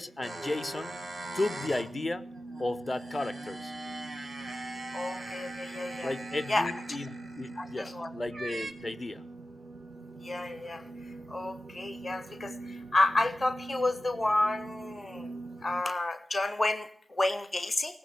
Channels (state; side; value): normal; both; correlation 0.95